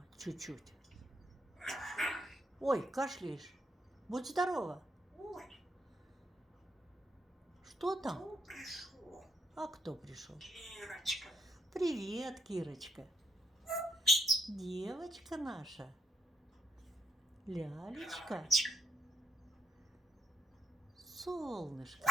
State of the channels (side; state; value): both; normal; correlation 0.75